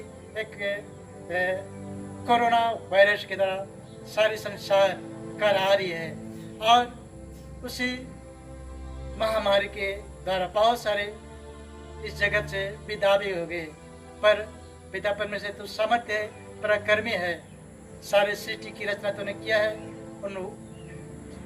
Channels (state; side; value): identical; both; correlation 1.00